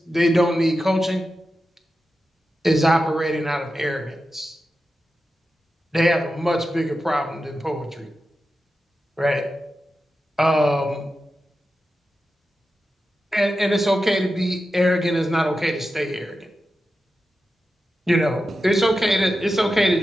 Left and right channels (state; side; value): normal; both; correlation 0.91